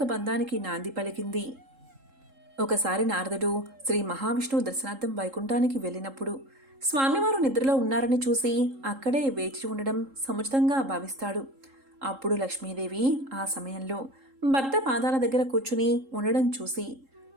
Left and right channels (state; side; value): late; left; 3.7 ms